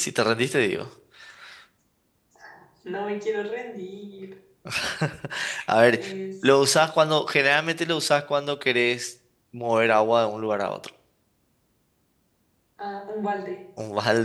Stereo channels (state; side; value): identical; both; correlation 1.00